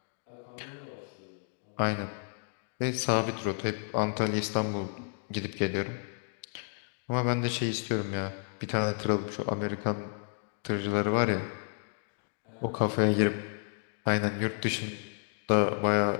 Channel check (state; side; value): silent; right; digital silence